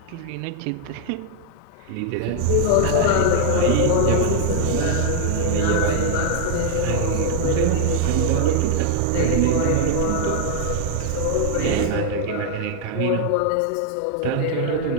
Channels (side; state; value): both; different; correlation 0.00